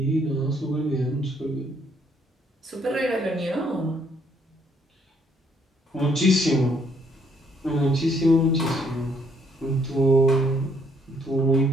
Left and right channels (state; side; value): normal; both; correlation 0.68